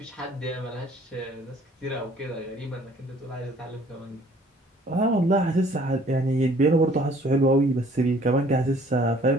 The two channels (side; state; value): both; normal; correlation 0.56